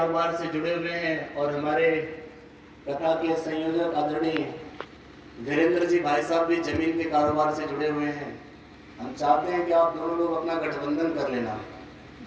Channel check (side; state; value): both; identical; correlation 1.00